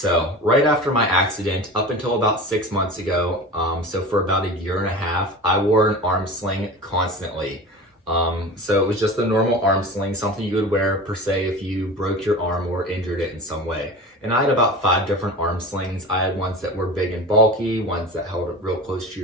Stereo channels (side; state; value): both; normal; correlation 0.33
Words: right after my accident, up until about 6 months ago, so for about a year and a half, I wore an arm sling constantly. So it was just a normal arm sling, something you would wear per se if you broke your arm or injured it in some way. And I had about 5 different arm slings. I had ones that were big and bulky, ones that held it real close to